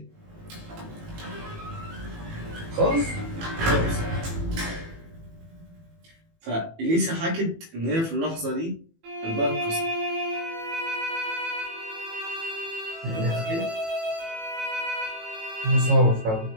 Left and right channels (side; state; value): left; late; 18 ms